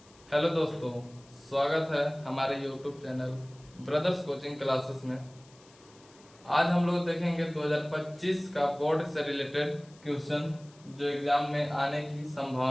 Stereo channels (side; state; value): left; noise; hiss, 27 dB below the sound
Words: हेलो दोस्तों, स्वागत है हमारे YouTube channel brothers coaching classes में। आज हम लोग देखेंगे 2025 का बोर्ड से रिलेटेड क्वेश्चन जो एग्जाम में आने की